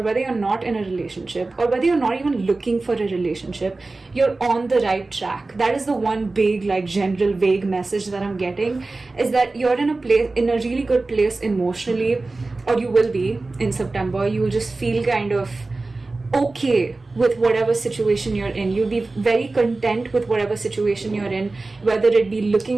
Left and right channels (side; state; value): left; quieter; 3.4 dB